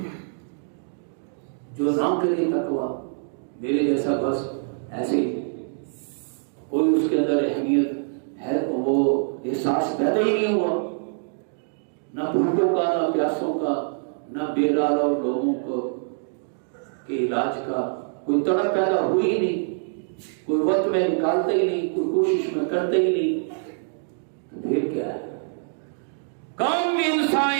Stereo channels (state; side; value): silent; left; digital silence